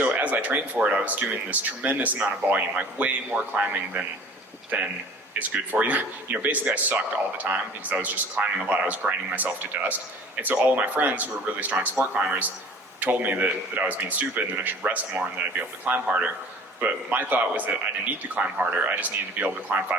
as I trained for it, I was doing this tremendous amount of volume, like way more climbing than is good for you. Basically I sucked all the time because I was just climbing a lot. I was grinding myself to dust. And so all of my friends who were really strong sport climbers told me that I was being stupid and that I should rest more and that I'd be able to climb harder. But my thought was that I didn't need to climb harder. I just needed to be able to climb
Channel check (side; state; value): both; normal; correlation 0.47